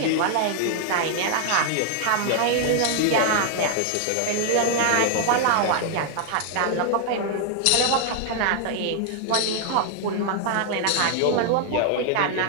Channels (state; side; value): different; both; correlation 0.00